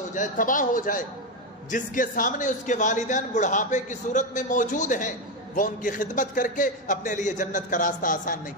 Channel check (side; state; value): both; normal; correlation 0.10